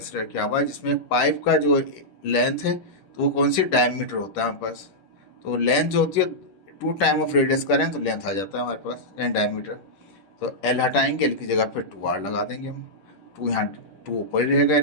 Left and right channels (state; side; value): late; right; 10 ms